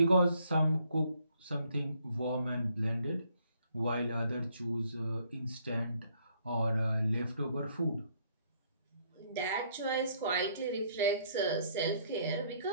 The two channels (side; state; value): both; inverted; correlation -0.67